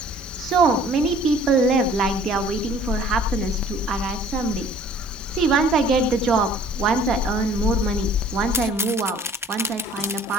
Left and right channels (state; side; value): normal; both; correlation 0.53